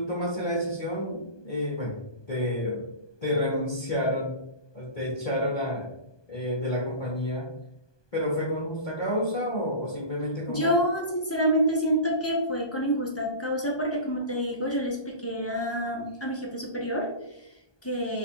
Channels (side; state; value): right; late; 1.2 ms